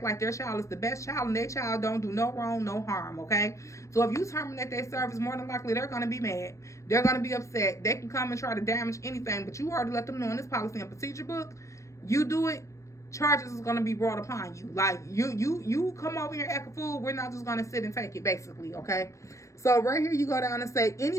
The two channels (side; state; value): right; late; 0.15 ms